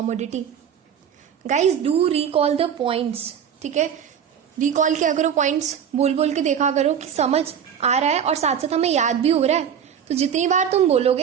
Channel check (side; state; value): left; quieter; 8.3 dB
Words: Guys do recall the points, ठीक है, recall किया करो, points बोल बोल के देखा करो कि समझ आ रहा है और साथ साथ हमें याद भी हो रहा है, तो जितनी बार तुम